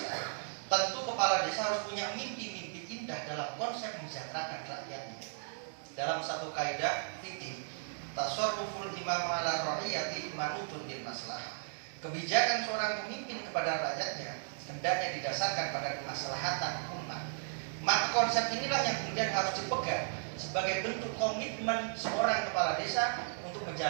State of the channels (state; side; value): silent; left; digital silence